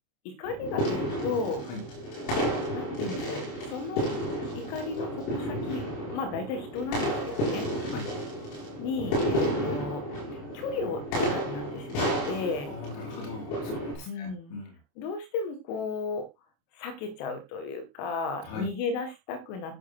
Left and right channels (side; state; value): right; late; 27 ms